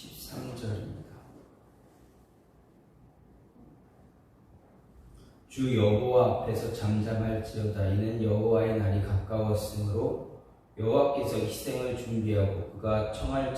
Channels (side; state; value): both; identical; correlation 1.00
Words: 주 여호와 앞에서 잠잠할지어다. 이는 여호와의 날이 가까웠으므로 여호와께서 희생을 준비하고 그가 청할